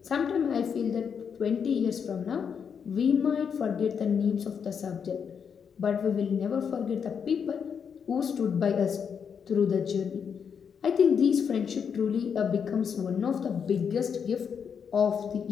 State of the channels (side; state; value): right; quieter; 7.0 dB